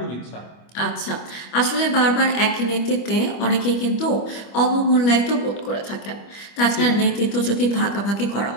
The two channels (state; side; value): late; right; 25 ms